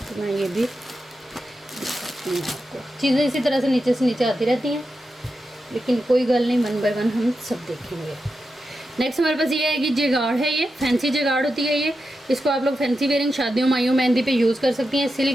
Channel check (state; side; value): normal; both; correlation 0.89